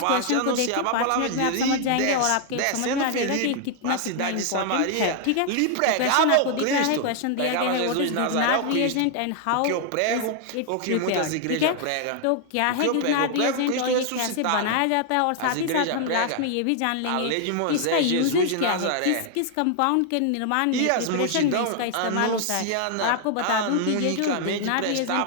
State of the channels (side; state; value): both; different; correlation 0.00